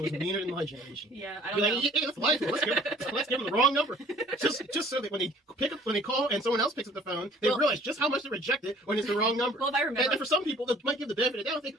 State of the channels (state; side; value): normal; both; correlation 0.53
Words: was like. meaner than my generation. Yeah, I Be don't know. like, hey, let's lie to them. Let's give them the wrong number. Just so that when they call and someone else picks up the phone, they realize just how much they reject it when it's the wrong number. Well, if I remember. And for some people, they might give the benefit of the doubt and think,